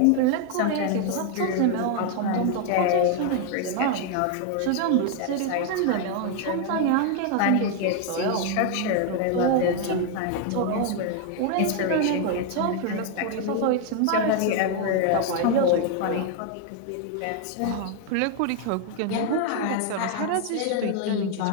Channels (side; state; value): both; different; correlation 0.00